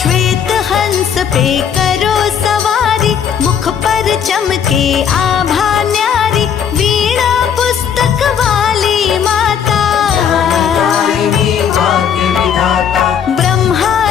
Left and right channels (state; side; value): quieter; right; 8.0 dB